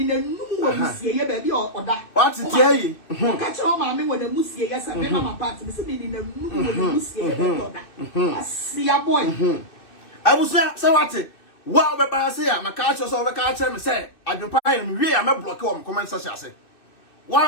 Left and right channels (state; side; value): late; right; 2.6 ms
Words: in a new baby or that. What's it? Yeah, catch your mammy when the Musia, yes, and then my party is in a new Musia. I see a boy. I was there, so what's it? Well, but I say, I'm a catcher, so I can't tell me, say, I can find me, I'm a block on comment, such as it.